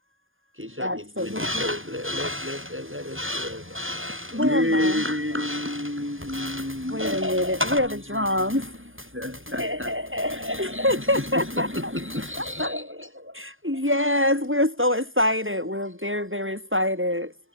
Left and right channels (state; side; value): late; left; 0.59 ms